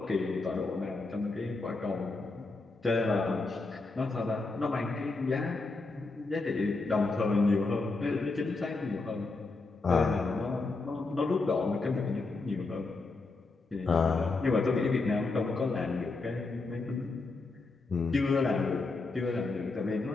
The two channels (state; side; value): quieter; right; 3.6 dB